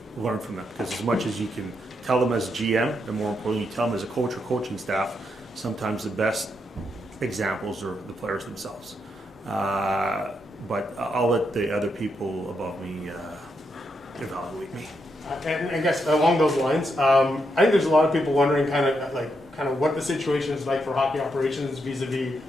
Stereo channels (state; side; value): normal; both; correlation 0.81